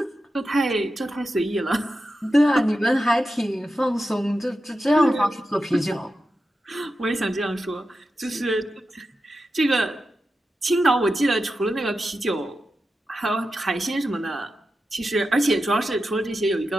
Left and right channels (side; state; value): both; normal; correlation 0.90